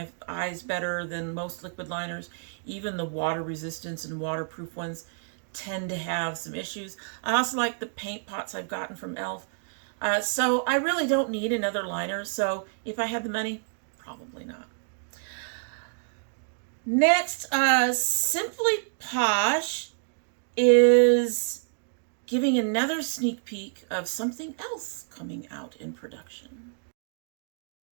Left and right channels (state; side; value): silent; left; digital silence